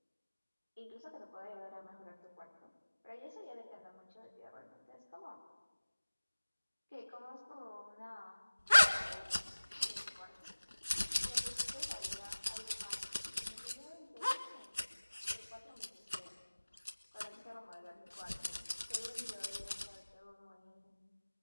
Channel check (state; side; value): inverted; both; correlation -1.00